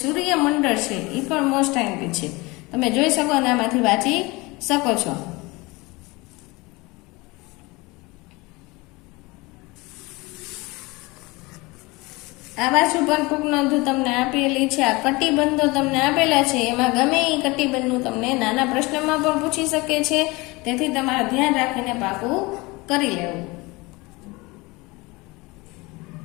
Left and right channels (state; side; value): quieter; right; 23.7 dB